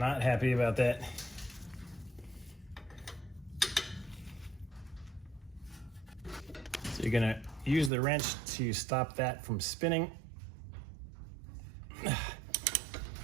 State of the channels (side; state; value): left; drops out; at 7.9 s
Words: happy about that. So you're gonna use the wrench to stop that from spinning.